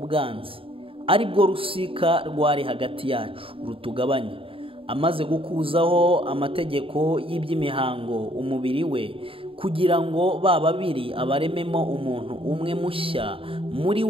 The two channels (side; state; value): left; late; 0.26 ms